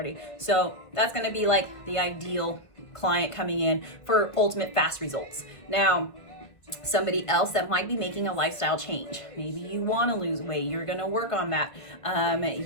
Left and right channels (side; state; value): right; late; 1.3 ms